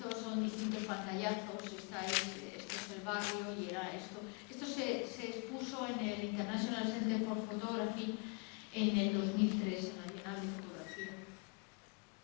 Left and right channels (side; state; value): right; quieter; 33.9 dB